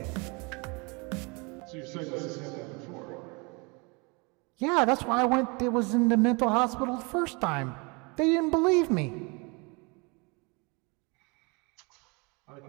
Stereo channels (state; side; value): quieter; left; 29.5 dB